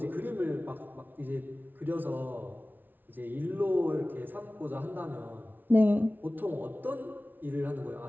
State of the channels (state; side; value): late; left; 0.087 ms